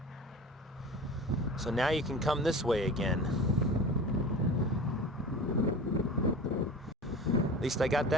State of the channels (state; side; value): normal; both; correlation 0.35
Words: So now you can come this way again. At least I got